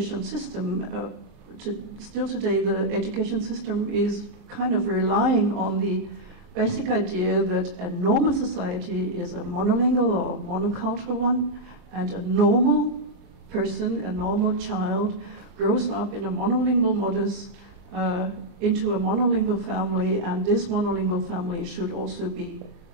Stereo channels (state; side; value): late; left; 39 ms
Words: system, still today the education system is kind of relying on the basic idea that a normal society is a monolingual or monocultural one, and a normal person, a normal child, grows up in a monolingual modus into a monolingual family, and this monolingual family should also be